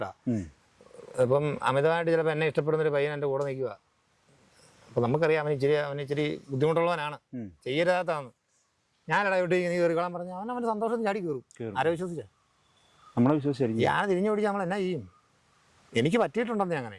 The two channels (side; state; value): both; identical; correlation 1.00